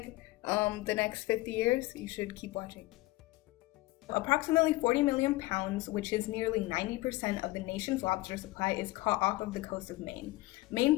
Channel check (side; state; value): right; quieter; 19.7 dB